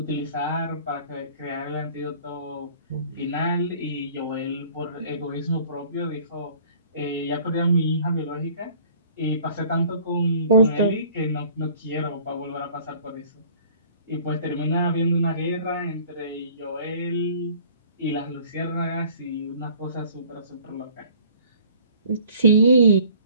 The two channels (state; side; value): inverted; both; correlation -0.52